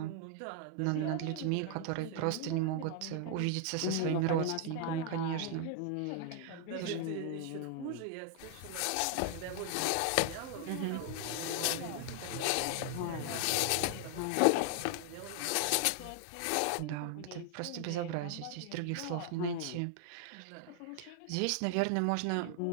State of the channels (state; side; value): different; both; correlation 0.00